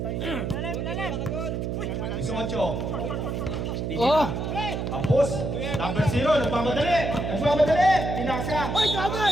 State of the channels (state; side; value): noise; right; hum, 2 dB below the sound